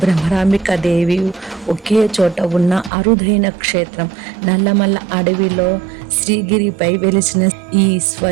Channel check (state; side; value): drops out; left; at 2.9 s